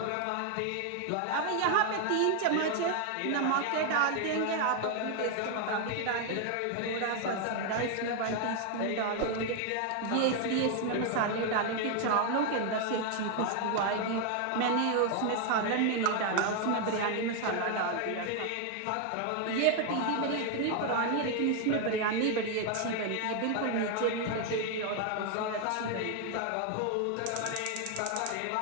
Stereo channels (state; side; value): different; both; correlation 0.00